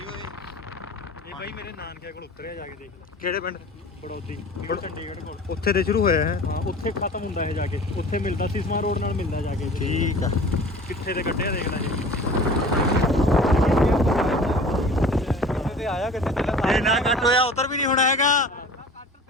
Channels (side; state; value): both; normal; correlation 0.43